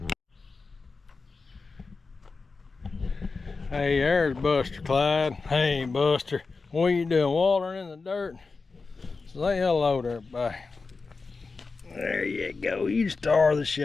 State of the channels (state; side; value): quieter; right; 4.3 dB